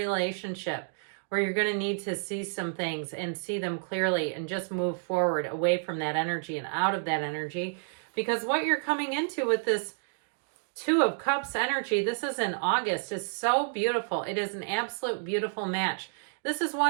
where you're going to need to see some things and see them clearly and just move forward away from that energy and out of that energy. Because what you're coming into with this Two of Cups energy, this is in August, is so beautiful. It is an absolute beautiful match. This is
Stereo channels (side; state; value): left; silent; digital silence